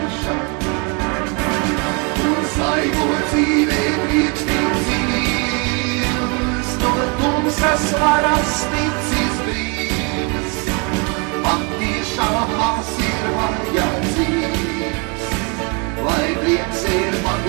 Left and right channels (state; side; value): quieter; left; 33.2 dB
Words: Un svaigo dzīvē priekšnīt dzīves, no tumsas varas ticis brīvs, patiešām maz ir vajadzīgs, lai prieks ir